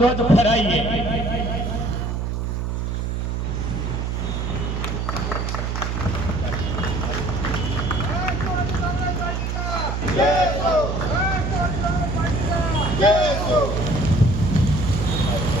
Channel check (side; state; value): right; noise; hum, 1 dB below the sound